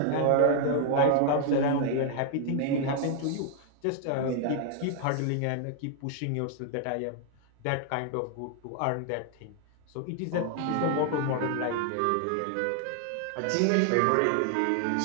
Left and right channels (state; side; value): different; both; correlation 0.00